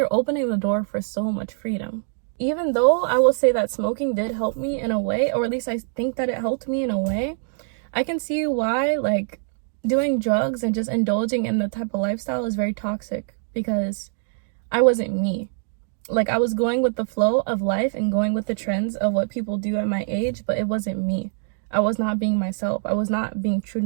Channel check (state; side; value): silent; left; 63 dB below the other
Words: opening the door for so much freedom. Even though I will say that smoking did help me in a way, or at least I think that it helped me in a way, I can see why like doing drugs and just indulging in the type of lifestyle is very toxic because I wasn't me. Like I was going with the flow of life and going with the trends of what people do at my age, but it wasn't me. I was not being myself. I was not being true